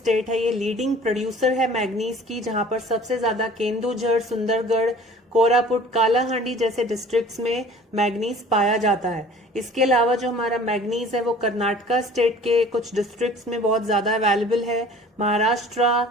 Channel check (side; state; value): both; normal; correlation 0.47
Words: है ये लीडिंग प्रोड्यूसर है मैग्नीज की, जहां पर सबसे ज्यादा केंदुझर, सुंदरगढ़, कोरापुट, कालाहांडी जैसे डिस्ट्रिक्ट्स में मैग्नीज पाया जाता है। इसके अलावा जो हमारा मैग्नीज है वो कर्नाटका स्टेट के कुछ डिस्ट्रिक्ट्स में बहुत ज्यादा अवेलेबल है, महाराष्ट्र